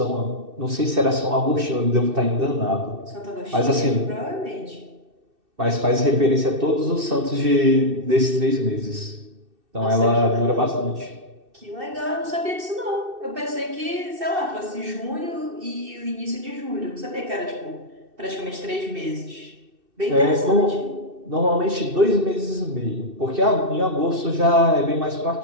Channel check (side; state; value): left; late; 2.6 ms